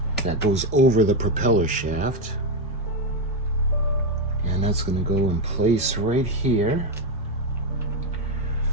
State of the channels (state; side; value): normal; both; correlation 0.07